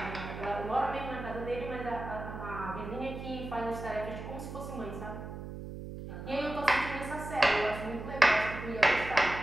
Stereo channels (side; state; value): right; noise; hum, 9 dB below the sound